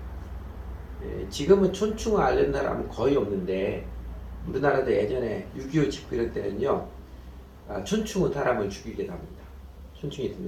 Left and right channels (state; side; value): identical; both; correlation 1.00